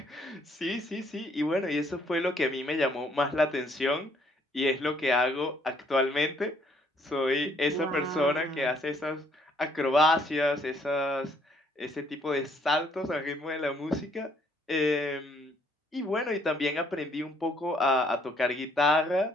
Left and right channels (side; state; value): both; normal; correlation 0.66